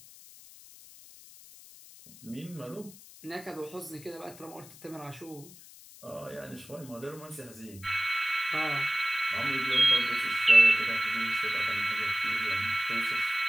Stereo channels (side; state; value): left; noise; hiss, 20 dB below the sound